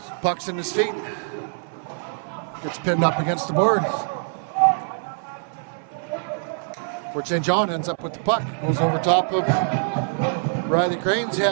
Puck's in his feet. Gets pinned up against the board. Fort St. John ends up with the puck. Goes over top of Riley Crane's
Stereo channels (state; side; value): silent; left; 60 dB below the other